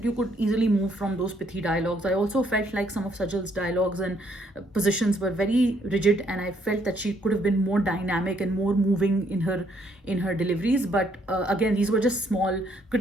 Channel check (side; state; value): both; normal; correlation 0.69